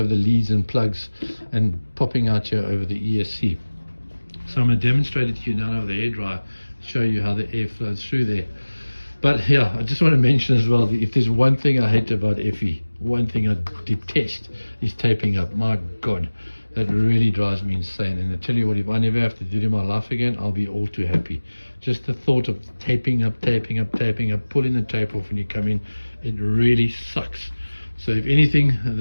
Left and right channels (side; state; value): both; inverted; correlation -1.00